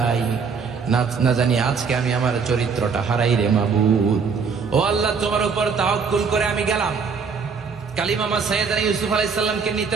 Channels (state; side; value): quieter; left; 5.6 dB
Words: না জানি আজকে আমি আমার চরিত্রটা হারাই রে মাবুদ। ও আল্লাহ, তোমার উপর তাওয়াক্কুল করে আমি গেলাম। কালিমামা সাইয়েদনা ইউসুফ আলাইহিস সালামকে নিতে